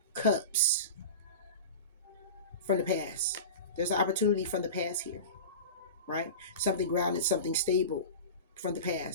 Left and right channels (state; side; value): inverted; both; correlation -0.30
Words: Cups from the past. There's an opportunity from the past here, right? Something grounded, something stable from the